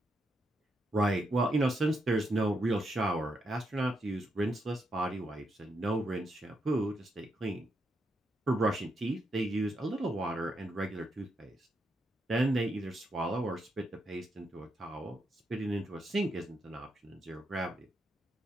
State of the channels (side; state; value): both; normal; correlation 0.80